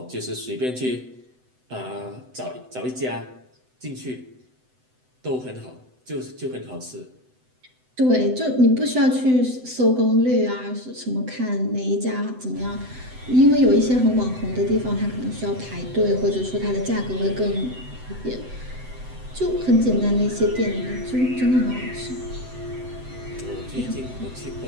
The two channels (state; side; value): late; left; 7.9 ms